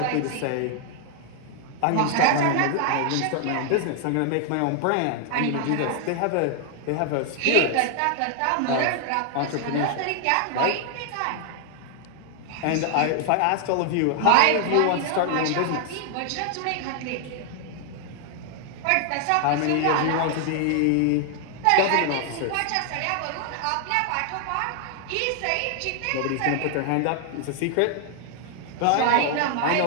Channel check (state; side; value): different; both; correlation 0.00